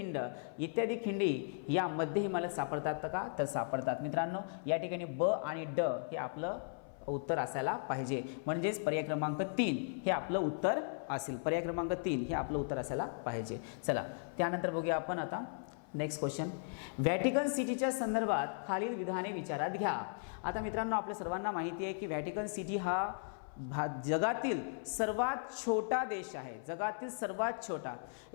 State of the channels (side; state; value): right; silent; 53 dB below the other